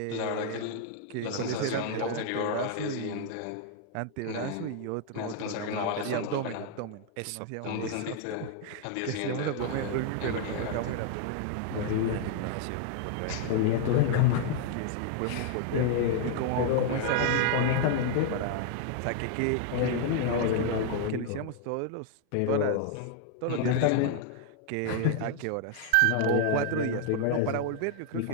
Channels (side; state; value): both; different; correlation 0.00